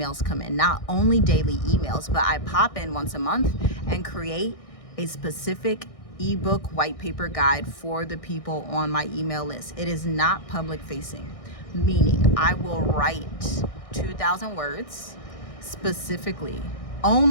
come in. Not only daily emails, but I pop in once a month and create a specific ebook white paper guide for the people on my email list. It is not public facing, meaning I will write 2,000 words specifically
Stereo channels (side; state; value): right; late; 1.6 ms